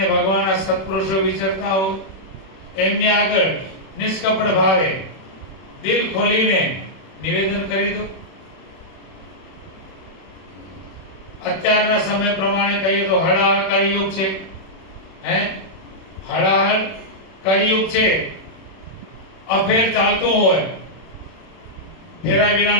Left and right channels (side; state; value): right; late; 31 ms